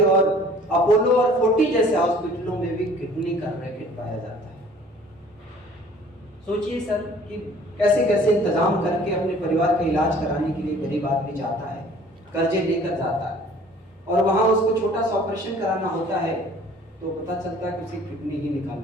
और अपोलो और 40 जैसे हॉस्पिटलों में भी किडनी का रैकेट पाया जाता है। सोचिए सर कि कैसे कैसे इंतजाम करके अपने परिवार का इलाज कराने के लिए गरीब आदमी जाता है, कर्जे लेकर जाता है, और वहां उसको छोटा सा ऑपरेशन कराना होता है तो पता चलता है कि उसे किडनी ही निकाल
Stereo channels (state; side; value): normal; both; correlation 0.52